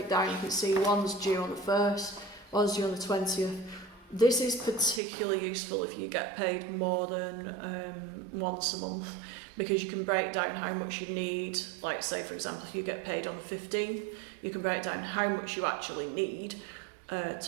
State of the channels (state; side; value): drops out; left; at 5.0 s